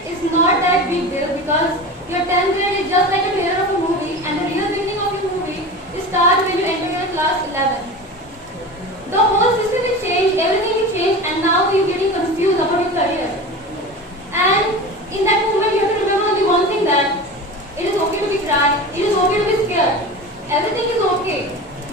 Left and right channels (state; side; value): normal; both; correlation 0.31